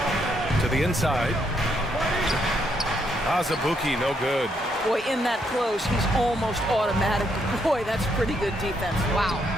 To the inside. Azubuike, no good. Boy, in that close, he's almost automatic. Boy, that's pretty good defense. Wow.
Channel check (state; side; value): normal; both; correlation 0.75